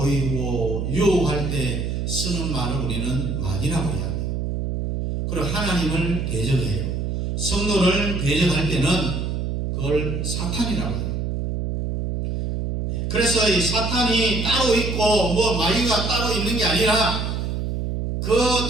유혹할 때 쓰는 말을 우리는 마귀라고 이야기해요. 그리고 하나님을 대적해요. 성도를 대적할 때는 그걸 사탄이라고 해요. 그래서 이 사탄이 따로 있고 뭐 마귀가 따로 있는 게 아니라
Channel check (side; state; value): right; noise; hum, 2 dB below the sound